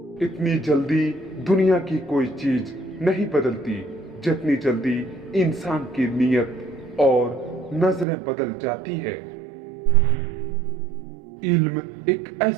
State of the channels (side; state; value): left; drops out; at 8.1 s